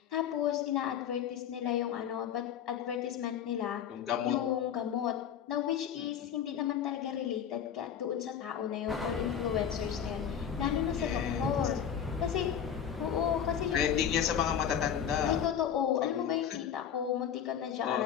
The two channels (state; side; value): quieter; right; 8.7 dB